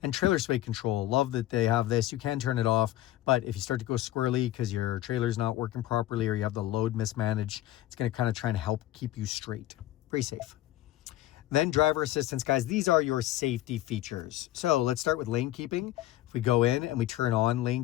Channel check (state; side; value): quieter; right; 14.6 dB